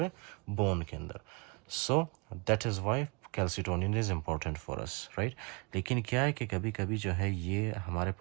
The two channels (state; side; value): quieter; left; 30.6 dB